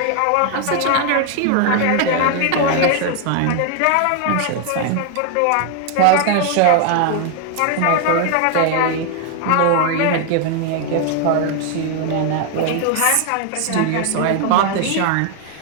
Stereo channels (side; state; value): both; different; correlation 0.01